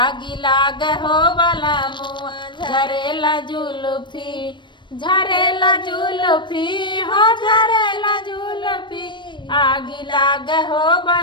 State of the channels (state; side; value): late; right; 0.22 ms